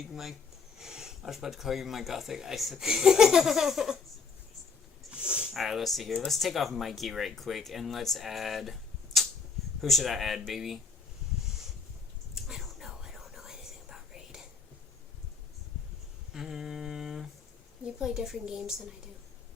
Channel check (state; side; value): quieter; right; 5.2 dB